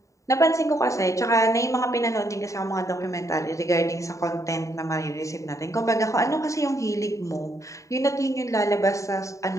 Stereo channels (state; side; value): late; right; 0.16 ms